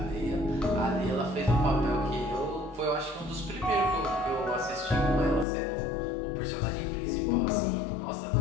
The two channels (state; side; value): drops out; right; at 5.5 s